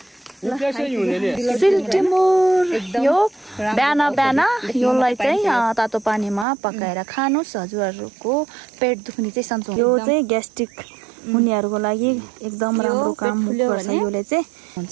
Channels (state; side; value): drops out; left; at 6.5 s